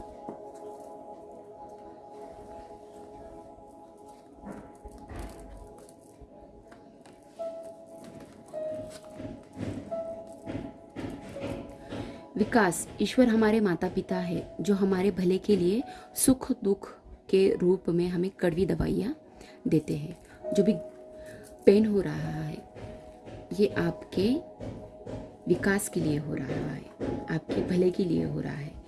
विकास, ईश्वर हमारे माता पिता है जो हमारे भले के लिए सुख दुख के रूप में हमें कड़वी दवाइयाँ देते हैं। जो भी पेन हो रहा है, ये आपके विकास के लिए हो रहा है, आपके भले के लिए हो रहा है।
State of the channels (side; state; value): both; identical; correlation 1.00